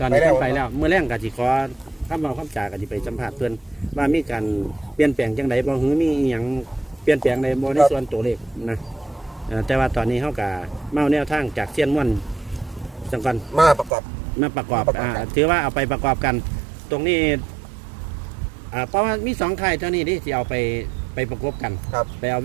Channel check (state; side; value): drops out; left; at 13.9 s